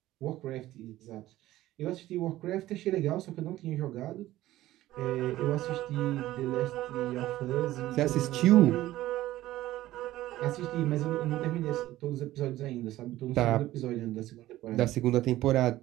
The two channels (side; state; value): left; quieter; 15.5 dB